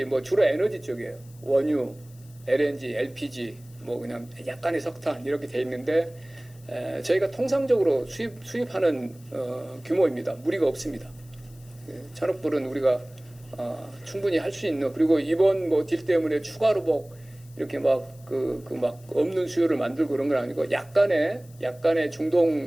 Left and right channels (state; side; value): noise; left; hiss, 26 dB below the sound